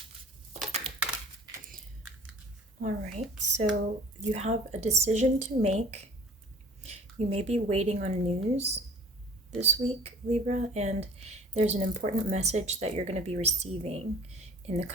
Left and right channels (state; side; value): normal; both; correlation 0.48